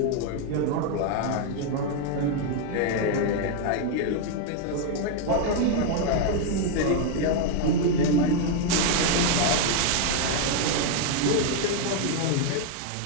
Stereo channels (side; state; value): both; different; correlation 0.01